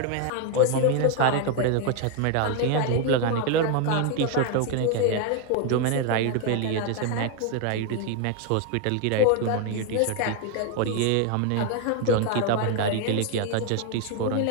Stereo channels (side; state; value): both; different; correlation 0.01